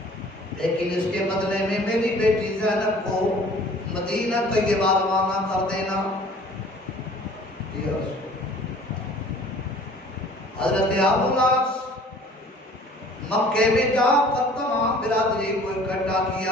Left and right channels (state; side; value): normal; both; correlation 0.50